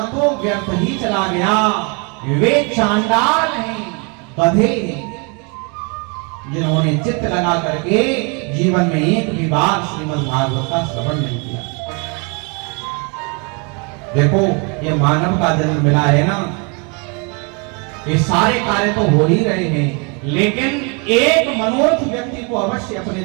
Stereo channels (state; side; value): quieter; left; 33.2 dB